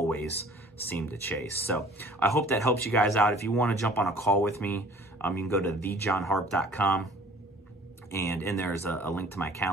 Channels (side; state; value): both; normal; correlation 0.51